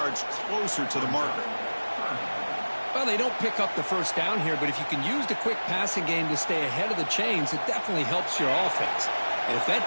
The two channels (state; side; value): inverted; both; correlation -1.00